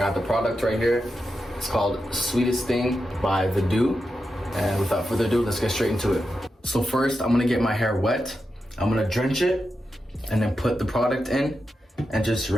the product right here. It's called Sweetest Thing by The Dew. And without further ado, let's get straight into it. So first, I'm going to get my hair wet. I'm going to drench it and then put the product in and just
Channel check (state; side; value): normal; both; correlation 0.88